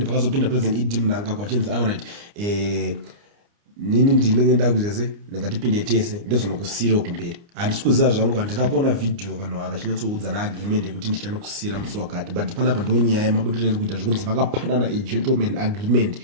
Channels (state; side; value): late; left; 29 ms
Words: pakazopinda President ED Mnangagwa achinzi alright nini ndinenge ndakuzese ndingatipinde tese ndozvinokusiyira kumberi. Handisi kuziva zvangu, handina kuona video vanhu ava vachinyatsoudza naagreement yekuti ndichanokusiyira musi wakati but panapa ndo nyaya yemabudiro iri kuita zvekunzi vakapanana gentleman agreement